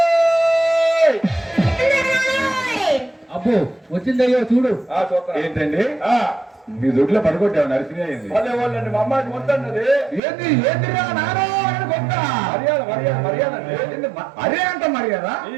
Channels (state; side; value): drops out; left; at 10.2 s